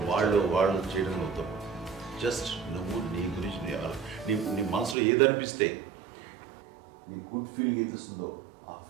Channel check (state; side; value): drops out; left; at 5.0 s